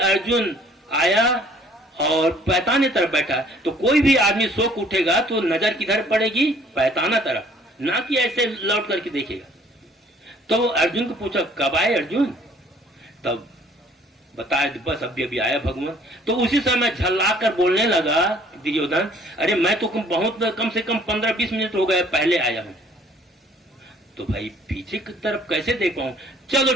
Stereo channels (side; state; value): both; normal; correlation 0.58